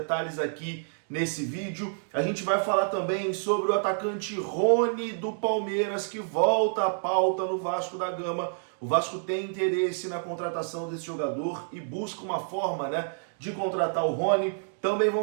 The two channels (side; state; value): left; silent; digital silence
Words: aqui nesse vídeo. A gente vai falar também sobre o atacante Rony do Palmeiras, que volta à pauta no Vasco da Gama. O Vasco tem interesse na contratação desse jogador e busca uma forma, né, de contratar o Rony. Também